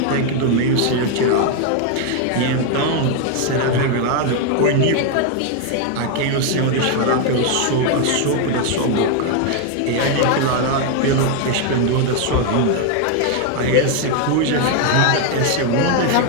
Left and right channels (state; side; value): different; both; correlation 0.01